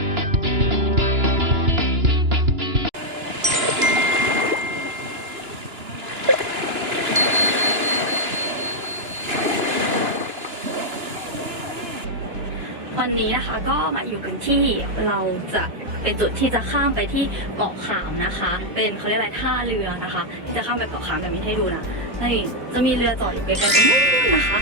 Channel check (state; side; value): late; left; 2.9 ms